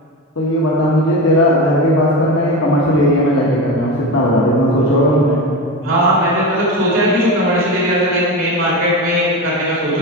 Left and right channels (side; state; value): both; normal; correlation 0.22